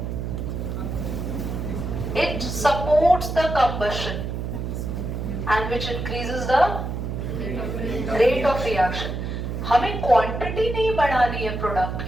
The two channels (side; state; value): right; noise; hum, 4 dB below the sound